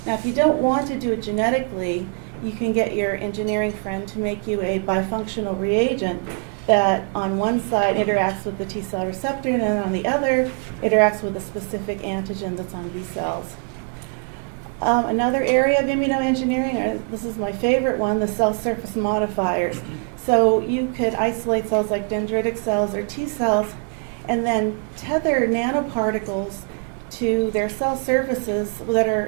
Now, if you don't want to do it genetically, you can get your engineering friend to make you a bifunctional reagent that on one side interacts with the T cell receptor, and then on the other interacts with a specific antigen that's on B cells. Another area of immunoengineering, this is my favorite one, the cell surface modifiers. So you could isolate cells like dendritic cells or T cells and then tether nanoparticles to their cell surfaces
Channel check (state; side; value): quieter; left; 38.8 dB